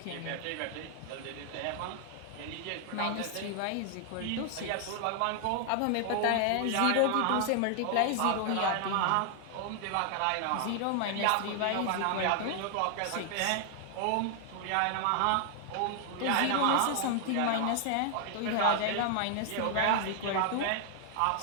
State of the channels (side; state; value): both; different; correlation 0.00